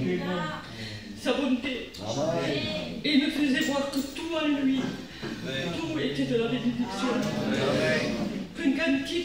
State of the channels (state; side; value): identical; both; correlation 1.00